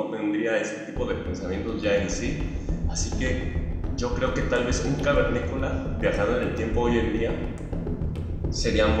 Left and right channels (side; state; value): both; identical; correlation 1.00